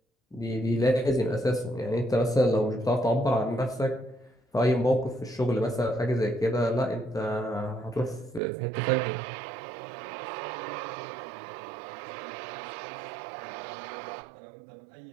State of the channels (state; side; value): drops out; left; at 8.4 s